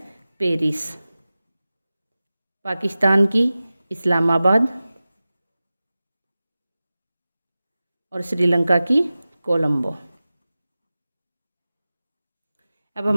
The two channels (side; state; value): both; inverted; correlation -0.96